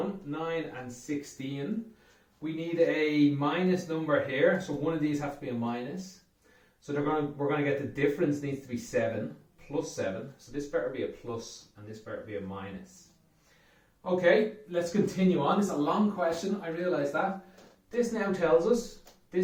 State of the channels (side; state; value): both; identical; correlation 1.00